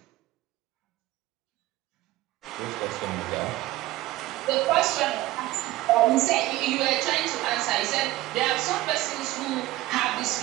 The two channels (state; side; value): quieter; left; 17.1 dB